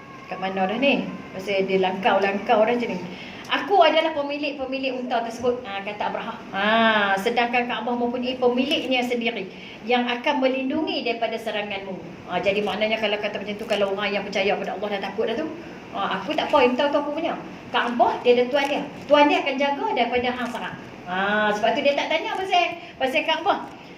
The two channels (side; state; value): both; identical; correlation 1.00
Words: kat mana dah ni? Pasal dia langkau dah macam ni. Aku adalah pemilik unta tersebut, kata Abraham. Sedangkan Kaabah mempunyai pemiliknya sendiri yang akan melindungi daripada seranganmu. Jadi maknanya kalau kata macam tu, kalau orang yang percaya pada Allah dah takut dah tu, aku tak apa, unta tu aku punya. Kaabah dia ada tuan dia. Tuan dia akan jaga daripada hang serang. Sebab tu dia tak tanya pasal Kaabah.